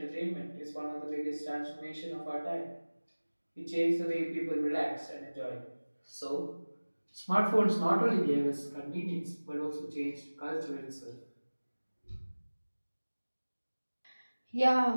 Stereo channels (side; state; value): both; inverted; correlation -1.00